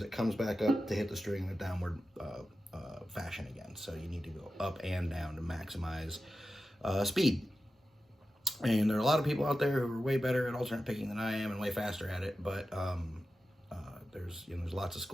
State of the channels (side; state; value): both; normal; correlation 0.92